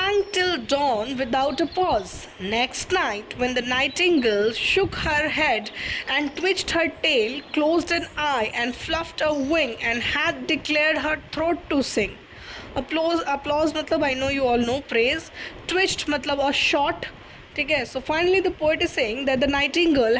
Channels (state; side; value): identical; both; correlation 1.00